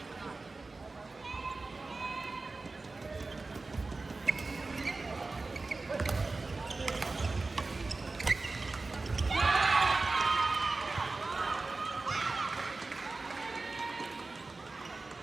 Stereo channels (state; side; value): quieter; left; 3.6 dB